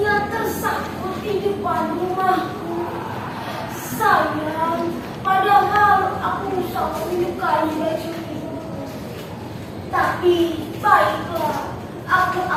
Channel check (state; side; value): identical; both; correlation 1.00